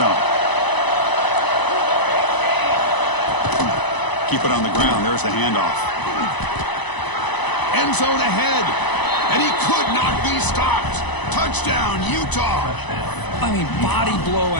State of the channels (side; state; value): right; late; 1.0 ms